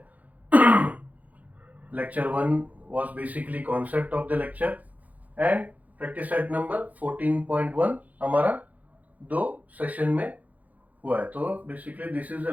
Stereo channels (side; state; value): left; late; 0.077 ms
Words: Lecture 1 was basically concept of the lecture and practice set number 14.1 हमारा 2 सेशन में हुआ है। तो basically this is